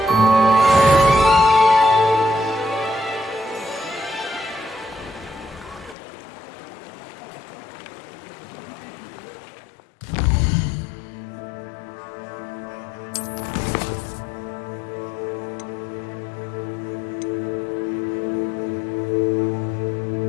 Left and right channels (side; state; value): right; drops out; at 6.0 s